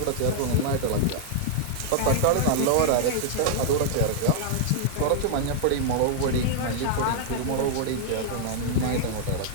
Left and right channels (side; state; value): both; different; correlation -0.01